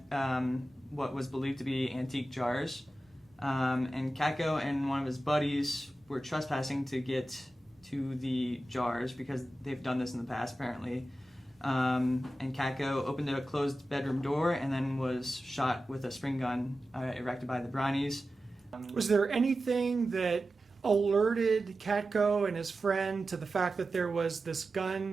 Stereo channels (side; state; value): both; normal; correlation 0.93